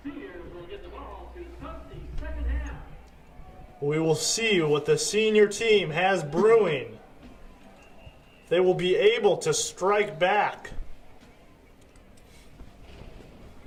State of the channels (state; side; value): identical; both; correlation 1.00